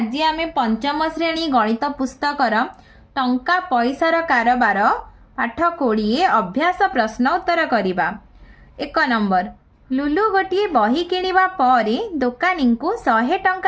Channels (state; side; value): identical; both; correlation 1.00